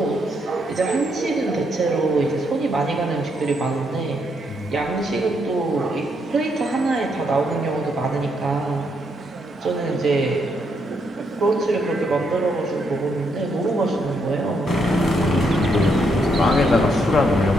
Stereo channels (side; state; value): both; normal; correlation 0.76